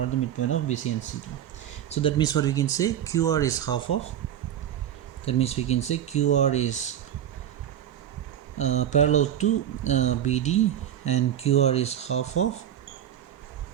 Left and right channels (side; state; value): left; quieter; 10.4 dB